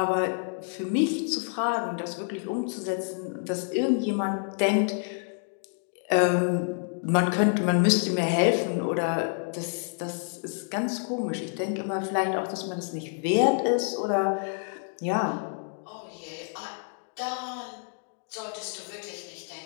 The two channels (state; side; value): silent; right; 59 dB below the other